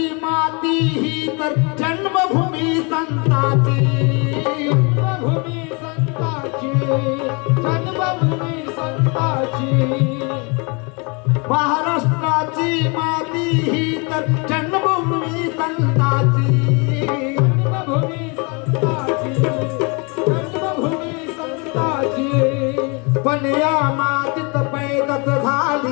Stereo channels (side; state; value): right; quieter; 31.7 dB